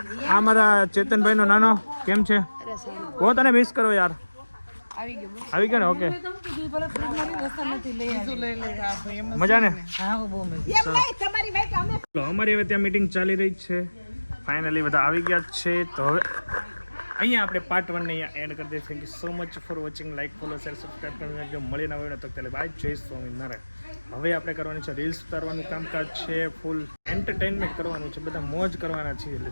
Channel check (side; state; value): both; inverted; correlation -1.00